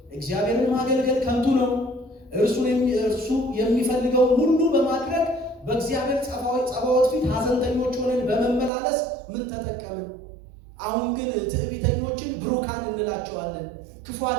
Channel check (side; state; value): left; drops out; at 8.7 s